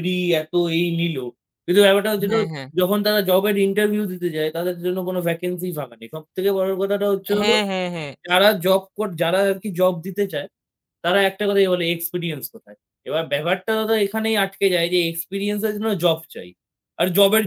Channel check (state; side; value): identical; both; correlation 1.00